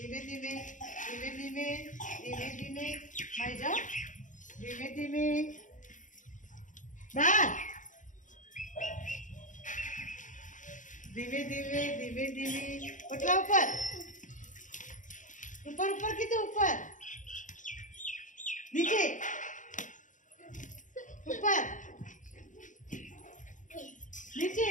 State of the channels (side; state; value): right; late; 0.37 ms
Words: ધીમે ધીમે ધીમે ધીમે ધીમે મારી જાઓ. ધીમે ધીમે બહાર. ધીમે ધીમે ધીમે ધીમે ઓટલા ઉપર ઉપર ઉપર કીધું, ઉપર નીચે ઉપર નીચે